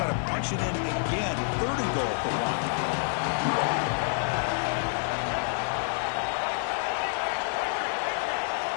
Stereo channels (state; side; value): silent; right; 59 dB below the other